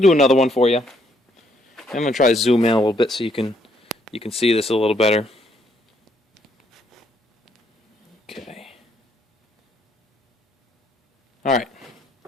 to do another one for you. I'm going to try to zoom in a little bit so you can see this a little better. Okay. Alright.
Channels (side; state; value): both; normal; correlation 0.70